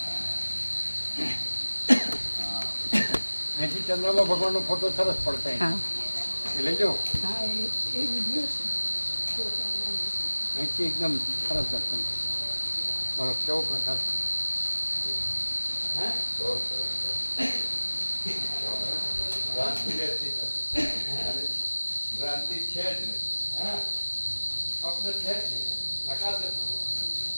અહીંથી ચંદ્રમાં ભગવાનનો ફોટો સરસ પડતા એ લઈ જાઓ. અહીંથી એકદમ સરસ દર્શન. બરો કેવો પ્રકાર ભ્રાંતિ છે જ નહીં. સ્વપ્ન છે જ નહીં. પ્રકાશ જ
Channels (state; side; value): inverted; both; correlation -1.00